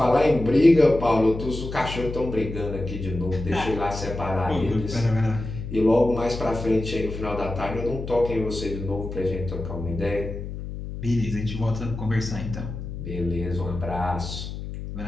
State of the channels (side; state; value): left; noise; hum, 8 dB below the sound